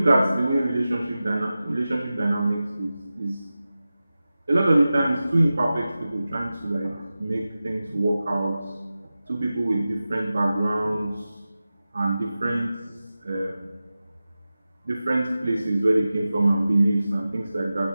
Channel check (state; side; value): inverted; both; correlation -0.95